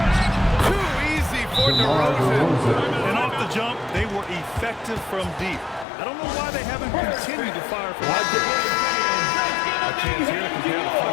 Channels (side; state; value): right; drops out; at 5.9 s